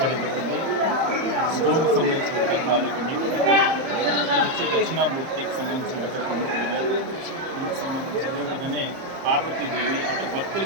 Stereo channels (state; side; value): late; left; 30 ms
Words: జరిగింది. స్కూల్కి సంబంధించిన విగ్రహాలు ఇవన్నీ కూడా వచ్చి దక్షిణామూర్తికి సంబంధించిన విగ్రహం, దీనికి సంబంధించి అదేవిధంగానే పార్వతీదేవి అంటే